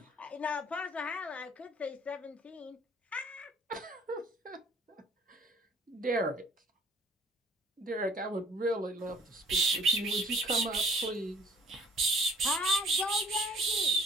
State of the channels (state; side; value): normal; both; correlation 0.57